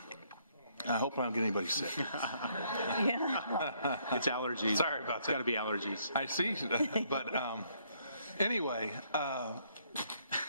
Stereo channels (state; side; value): inverted; both; correlation -0.69